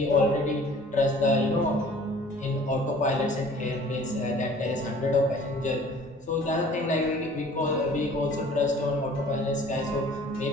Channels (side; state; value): both; normal; correlation 0.50